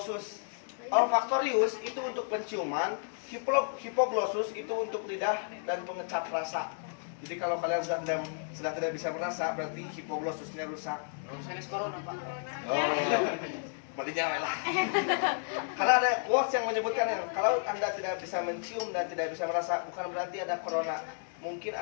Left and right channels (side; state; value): right; silent; digital silence